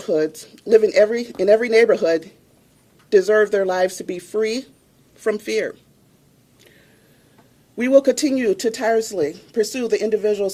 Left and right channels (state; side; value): identical; both; correlation 1.00